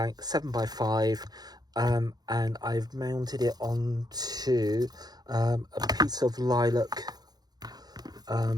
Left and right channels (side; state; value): left; late; 0.19 ms